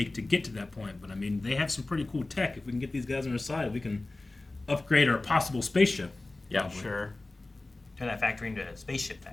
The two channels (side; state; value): right; quieter; 3.0 dB